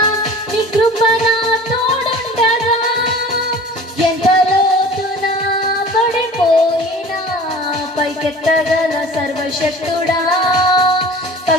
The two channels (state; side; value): normal; both; correlation 0.42